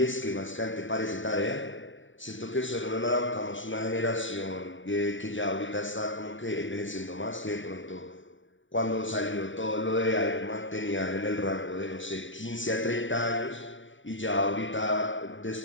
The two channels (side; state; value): right; late; 0.56 ms